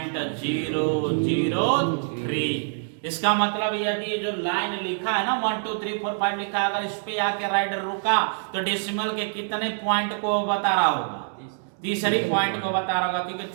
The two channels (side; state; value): left; silent; digital silence